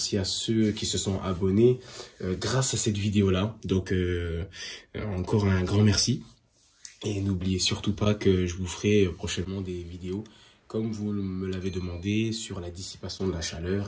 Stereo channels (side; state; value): both; identical; correlation 1.00